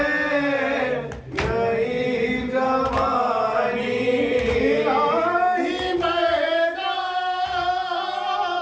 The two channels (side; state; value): both; identical; correlation 1.00